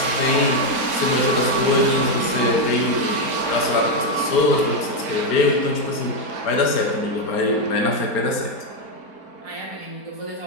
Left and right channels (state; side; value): late; right; 4.3 ms